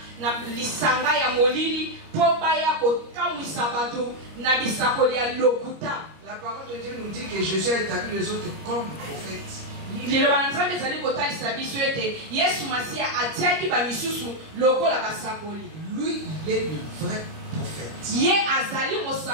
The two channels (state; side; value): late; left; 25 ms